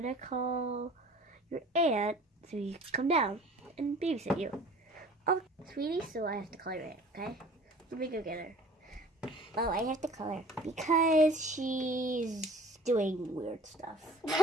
call your aunt so you can come down and babysit you. Oh, sweetie, so I have to call your aunt, okay? Let me go get her. Oh, I have to call her because she's doing weird stuff.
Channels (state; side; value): normal; both; correlation 0.48